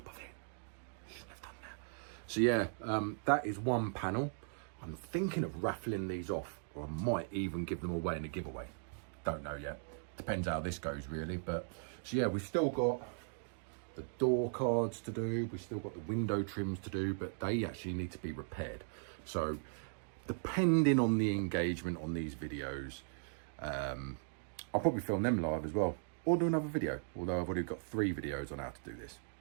of it. Shouldn't have done that. So yeah, that is one panel. I'm thinking of raffling these off, or I might even give them away in a giveaway. Don't know yet. Depends how this goes really. But so yeah, we've still got the door cards to do. We've still got the window trims to do, but they actually need to be repaired. So depending on the engagement on these videos, I'll probably film them live as well, or do another video. Although I've already got 3 videos on how to do this,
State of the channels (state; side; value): silent; left; digital silence